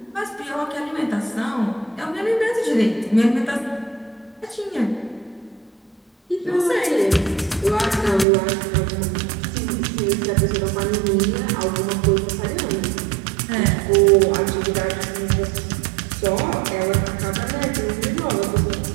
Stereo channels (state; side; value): drops out; left; at 8.2 s